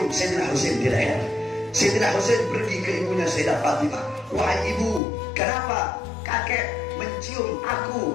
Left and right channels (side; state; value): right; drops out; at 5.0 s